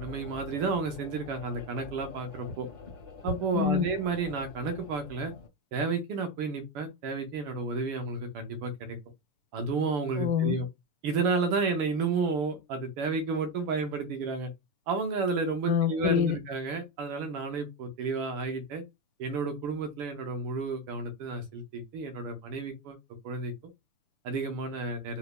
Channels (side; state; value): left; late; 6.9 ms